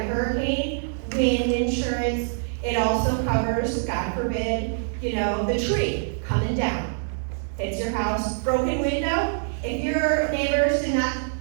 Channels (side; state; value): left; silent; digital silence